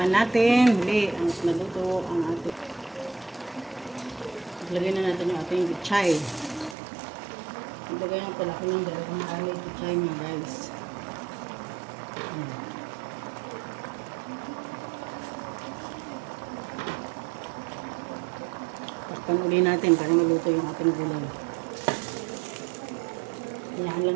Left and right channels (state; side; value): drops out; left; at 6.8 s